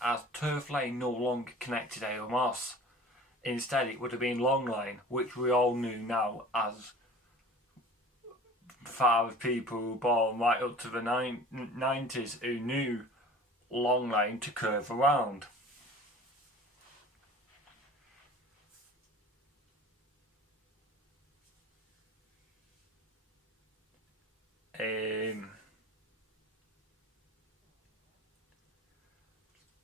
Turf Lane no longer connected Hale Moss. Instead, it would have been Long Lane, which we all knew now as far as people who were born right up to the 90s who knew Long Lane to curve around.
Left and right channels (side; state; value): both; normal; correlation 0.43